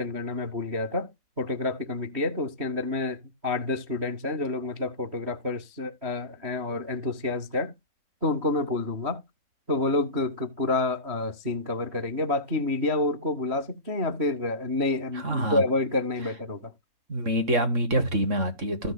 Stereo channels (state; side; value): late; left; 3.1 ms